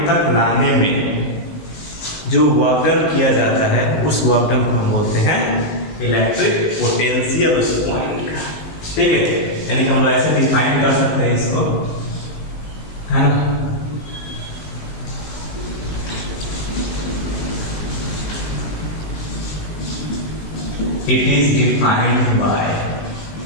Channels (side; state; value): right; late; 19 ms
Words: तक लाने में जो वर्क डन किया जाता है उस वर्क डन को हम बोलते हैं इलेक्ट्रिक पोटेंशियल उस पॉइंट का। ठीक है, यानी कि हम लोग ऐसे डिफाइन कर सकते हैं इसको, है ना। It is defined by